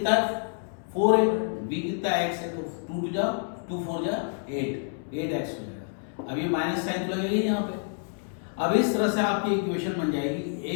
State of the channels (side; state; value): right; silent; 59 dB below the other